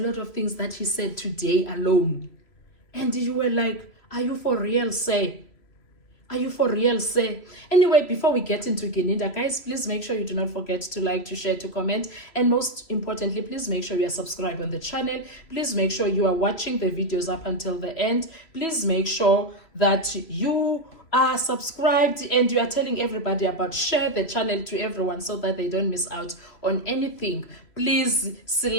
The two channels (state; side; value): late; right; 2.9 ms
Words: of things that he said today alone. And you were like, are you for real, say? Are you for real, say? Anyway, before we get into Gininda, guys, please make sure you do not forget to like, to share, to comment. And most importantly, please make sure you are subscribed on the channel. Please make sure you are watching the videos up until the end. Please make sure that you are subscribed and you are telling everybody about. Share the channel to everyone so that they don't miss out on anything. Please